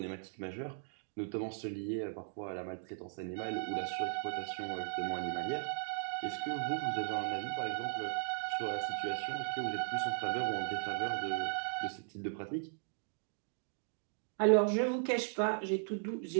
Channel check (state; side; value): silent; left; digital silence